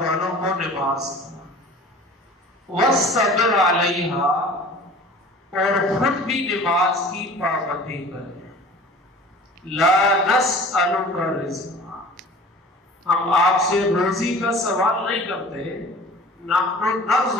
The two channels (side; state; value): both; normal; correlation 0.44